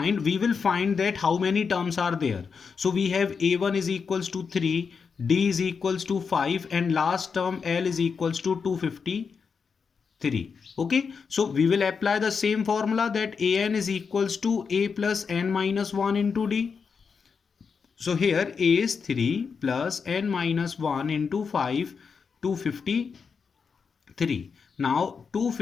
that how many terms are there. So we have a1 is equals to 3, d is equals to 5, and last term l is equals to 253. Okay, so we will apply the same formula that an is equals to a plus n minus 1 into d. So here a is 3 plus n minus 1 into 5, 253. Now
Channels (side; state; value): right; quieter; 5.7 dB